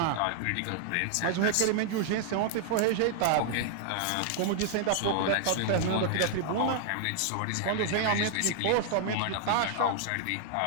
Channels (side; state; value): both; different; correlation 0.00